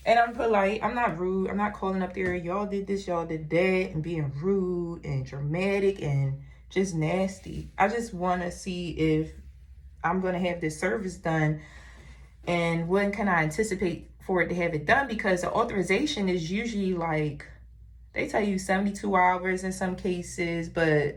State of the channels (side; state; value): both; identical; correlation 1.00